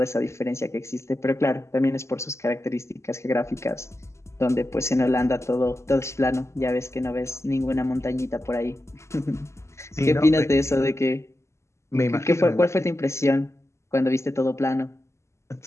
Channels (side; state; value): right; late; 0.13 ms